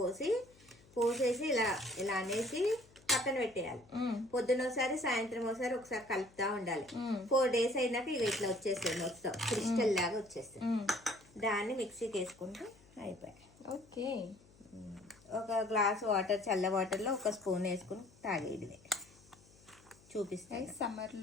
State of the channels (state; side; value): noise; left; hum, 26 dB below the sound